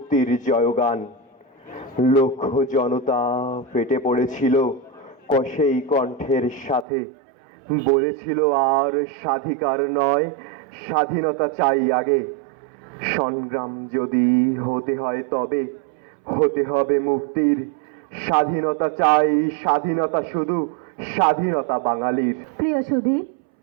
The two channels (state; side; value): drops out; left; at 6.9 s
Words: জয়গান। লক্ষ জনতা ফেটে পড়েছিল কষেই কণ্ঠের সাথে, বলেছিল আর স্বাধিকার নয়, স্বাধীনতা চাই আগে। সংগ্রাম যদি হতে হয় তবে হতে হবে মুক্তির, স্বাধীনতা চাই, স্বাধীনতা শুধু, স্বাধীনতা বাঙালির। প্রিয় সুধী,